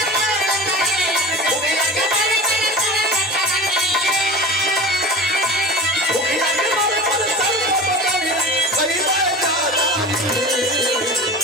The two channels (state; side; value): normal; both; correlation 0.34